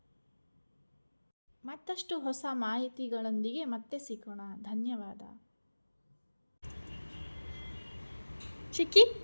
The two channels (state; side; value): inverted; both; correlation -1.00